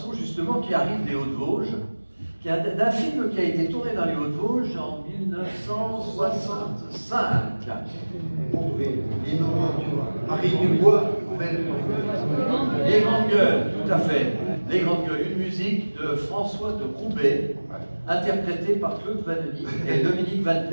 justement, qui arrive des Hauts-de-Vosges, d'un film qui a été tourné dans les Hauts-de-Vosges en 1965. Les Noventures. Marie Dubois, belle. Les Grandes Gueules, tout à fait. Les Grandes Gueules, une musique de François de Roubaix, interprétée par Claude Vanoni et Dominique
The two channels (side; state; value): both; inverted; correlation -1.00